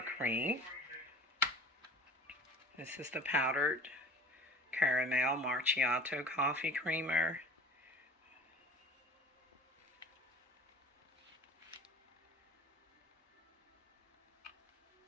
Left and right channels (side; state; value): both; normal; correlation 0.44